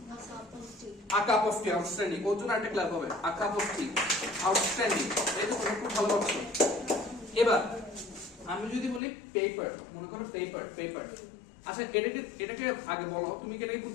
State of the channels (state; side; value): drops out; right; at 9.0 s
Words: A cup of tea, outstanding. ওর জন্য একটা ক্ল্যাপ হবে। A cup of tea, outstanding. এই তো খুব ভালো করছো। এবার আমি যদি বলি পেপার, মনে করো পেপার, পেপার। আচ্ছা, এটাকে আগে বলো, তুমি কি এটাকে